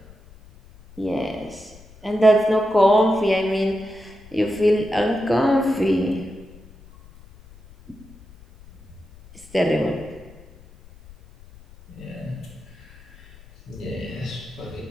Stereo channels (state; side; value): noise; left; rumble, 23 dB below the sound